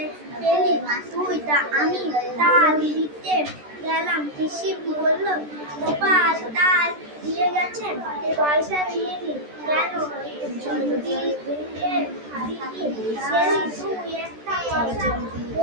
পেলি তুই? আমি তাল দিতে গেলাম। পিসি বলল, গোপাল তাল দিয়ে গেছে, পয়সা নিয়েনি কেন? দিদি তুই একটা কথা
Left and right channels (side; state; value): left; late; 13 ms